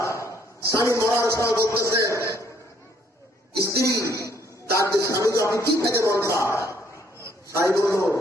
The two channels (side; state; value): both; normal; correlation 0.66